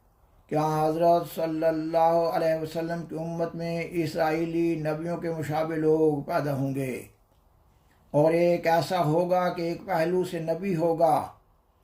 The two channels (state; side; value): identical; both; correlation 1.00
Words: کہ حضرت صلی اللہ علیہ وسلم کی امت میں اسرائیلی نبیوں کے مشابہ لوگ پیدا ہوں گے، اور ایک ایسا ہوگا کہ ایک پہلو سے نبی ہوگا